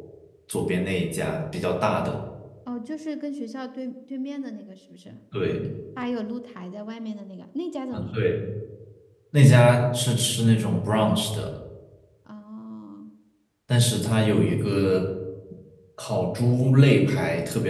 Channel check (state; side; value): identical; both; correlation 1.00